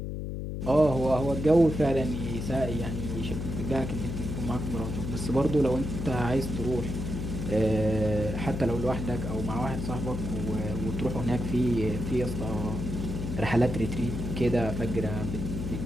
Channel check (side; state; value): left; noise; hum, 4 dB below the sound